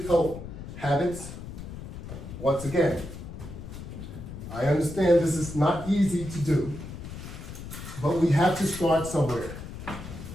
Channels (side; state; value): left; noise; rumble, 10 dB below the sound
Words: health habits. Once again, I understand this is not easy to do, but we have to start somewhere.